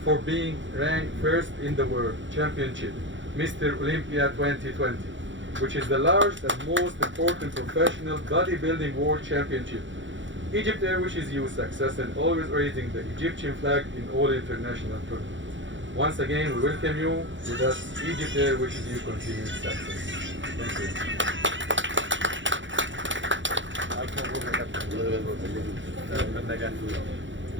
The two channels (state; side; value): late; left; 0.55 ms